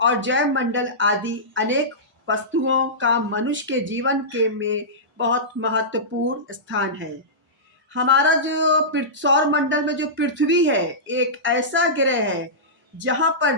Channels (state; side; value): normal; both; correlation -0.16